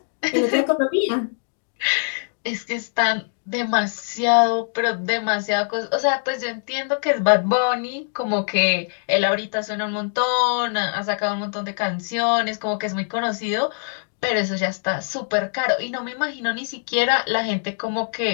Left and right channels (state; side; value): silent; right; 63 dB below the other